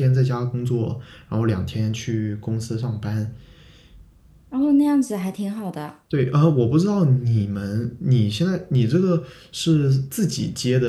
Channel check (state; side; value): identical; both; correlation 1.00